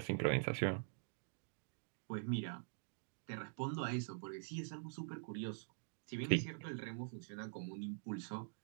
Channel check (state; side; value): silent; left; digital silence